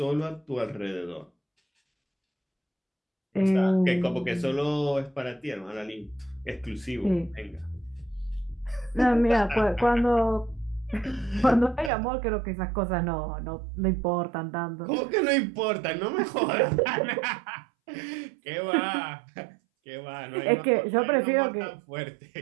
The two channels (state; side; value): drops out; left; at 11.9 s